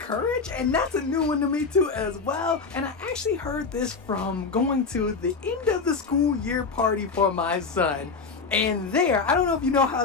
and that's a new one to me too as well. And I actually heard this from going to the end of the school year party for my son. And there, I don't know if you know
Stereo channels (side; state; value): right; quieter; 4.8 dB